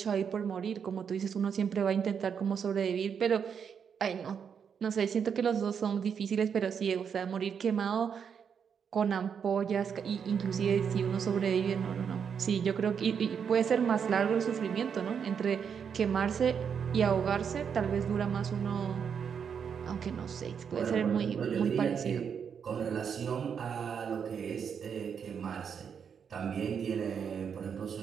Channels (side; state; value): left; quieter; 7.1 dB